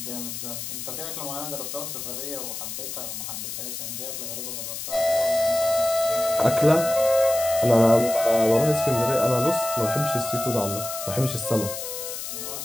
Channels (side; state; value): left; noise; hiss, 7 dB below the sound